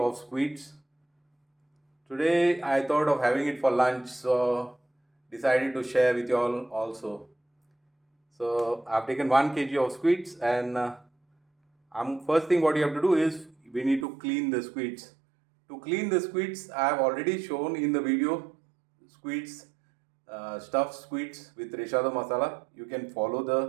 squids. Today I thought of having it for lunch, so decided to share with you all also. So I've taken 1 kg of squids, and first thing what you have to do is we need to clean the squids. To clean the squids, I have already shown in the video squids, stuffed squids with Rechado Masala. You can follow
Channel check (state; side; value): drops out; left; at 14.1 s